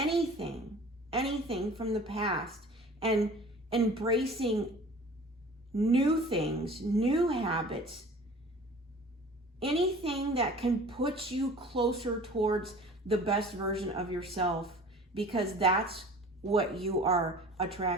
from the past and embracing new things, new habits, anything that can put you closer towards the best version of yourself, because that's what you are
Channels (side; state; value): both; normal; correlation 0.44